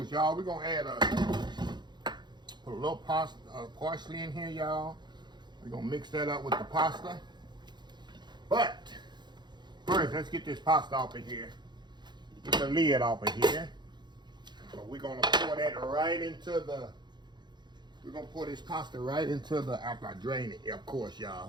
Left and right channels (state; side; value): late; left; 0.21 ms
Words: y'all, we're gonna add put a little parsley in here, y'all. We're gonna mix that up with the pasta. But first, let's get this pasta off of here. Get the lid off of here. So we're gonna pour that right into the, we're gonna pour this pasta right into the, after I drain it, of course,